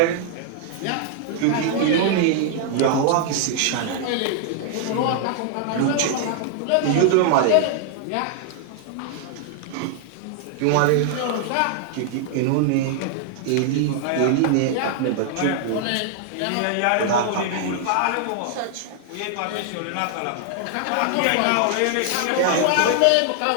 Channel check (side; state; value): both; different; correlation 0.00